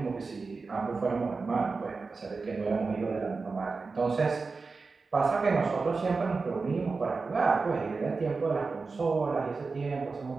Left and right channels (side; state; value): left; quieter; 4.3 dB